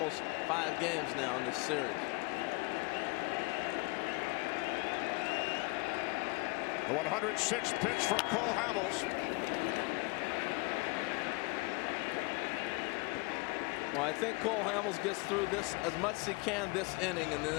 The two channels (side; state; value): right; quieter; 26.9 dB